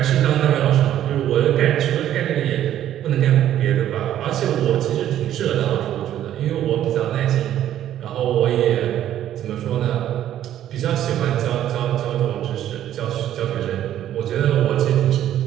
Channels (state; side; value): quieter; left; 11.6 dB